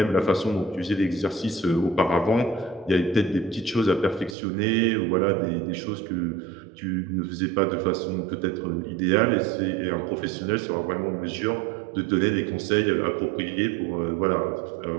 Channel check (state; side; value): drops out; left; at 4.4 s